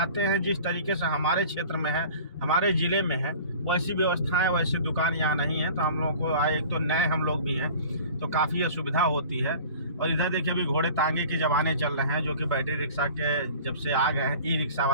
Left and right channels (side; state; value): both; inverted; correlation -0.44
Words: हैं, जिस तरीके से हमारे क्षेत्र में है, हमारे ज़िले में है, वैसी व्यवस्थाएं, वैसी दुकान यहाँ नहीं है। तो हम लोगों को एक तो नए हम लोग भी हैं, तो काफ़ी असुविधा होती है। और इधर देखिए अभी घोड़े तांगे के ज़माने चल रहे हैं, जो कि बैटरी रिक्शा के जब से आ गए हैं, ई रिक्शा